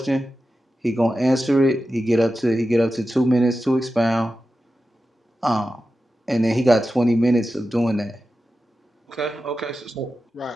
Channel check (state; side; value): normal; both; correlation 0.92